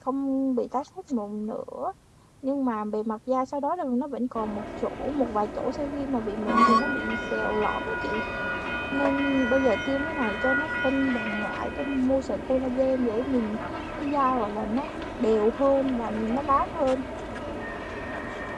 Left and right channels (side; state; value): both; identical; correlation 1.00